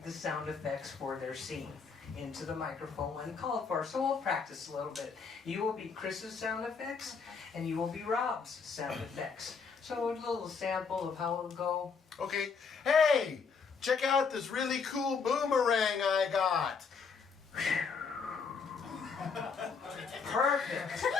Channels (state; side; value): quieter; right; 5.5 dB